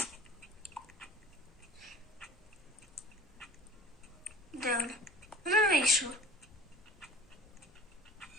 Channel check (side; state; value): both; normal; correlation 0.43